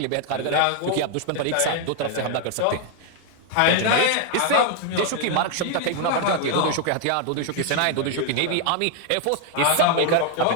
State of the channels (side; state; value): both; different; correlation 0.00